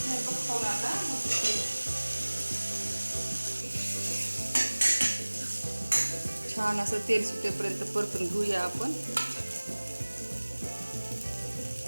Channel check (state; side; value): inverted; both; correlation -1.00